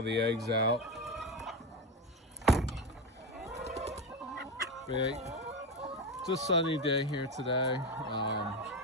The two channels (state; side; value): normal; both; correlation 0.17